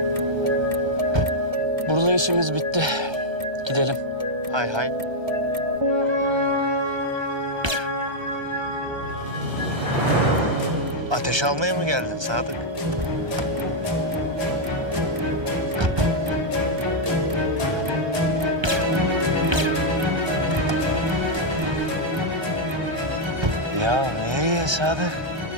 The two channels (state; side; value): late; left; 1.3 ms